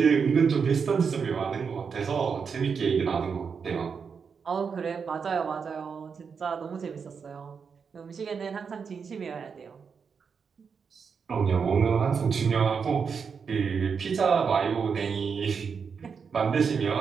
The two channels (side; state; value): left; quieter; 6.0 dB